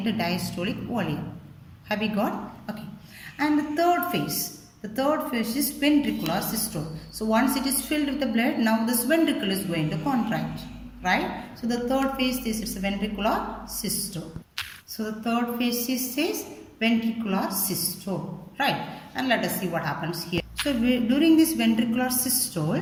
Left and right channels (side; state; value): both; identical; correlation 1.00